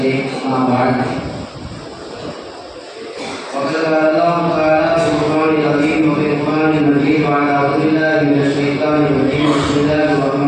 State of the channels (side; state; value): both; identical; correlation 1.00